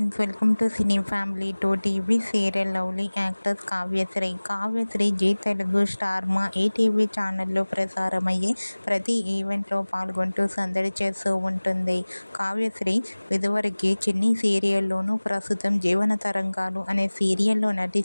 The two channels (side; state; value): both; inverted; correlation -1.00